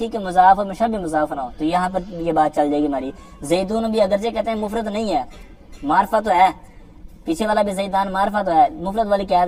کہ مضاف اور مشابہ مضاف نہ ہو، تو یہاں پر یہ بات چل جائے گی ہماری۔ زیدون بھی اگرچہ کہتے ہیں مفرد نہیں ہے، معرفہ تو ہے، پیچھے والا بھی زیدان معرفہ تو ہے، مفرد والی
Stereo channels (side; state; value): both; identical; correlation 1.00